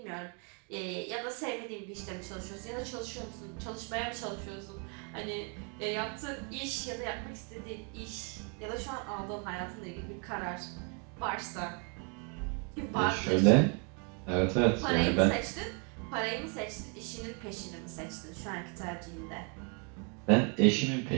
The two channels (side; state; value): left; quieter; 36.7 dB